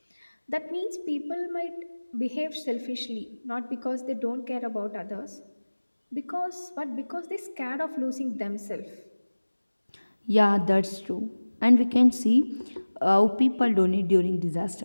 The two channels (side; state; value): both; inverted; correlation -1.00